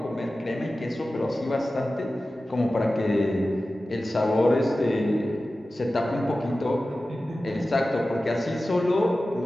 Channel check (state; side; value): normal; both; correlation 0.95